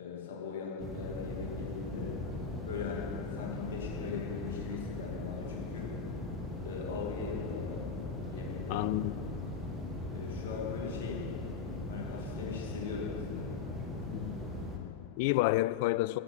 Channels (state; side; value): quieter; right; 6.3 dB